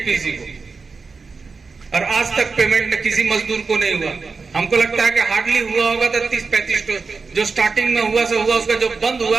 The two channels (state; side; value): quieter; left; 4.5 dB